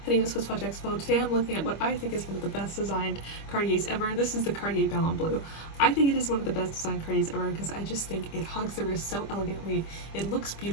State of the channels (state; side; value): late; right; 25 ms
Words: name is SwissWatchExpo. Today I'm looking at what I think is one of the best designed Cartiers ever. This is the Cartier Ballon Bleu. I think it is one of the best designed Cartiers ever because I just think it hugs the wrist so elegantly, it looks